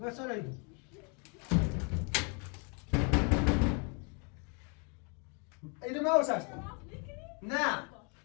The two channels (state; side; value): quieter; right; 36.3 dB